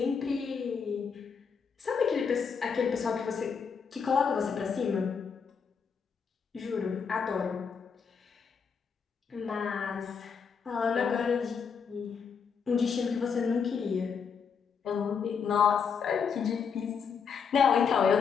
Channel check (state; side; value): quieter; right; 6.3 dB